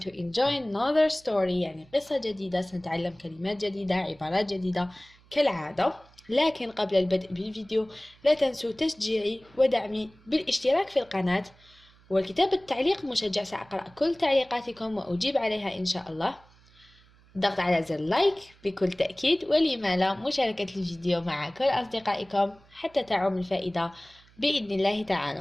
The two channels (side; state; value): right; noise; hum, 28 dB below the sound